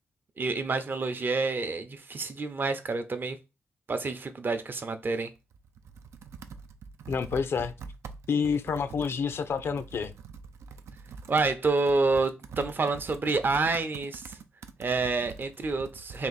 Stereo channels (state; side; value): normal; both; correlation 0.72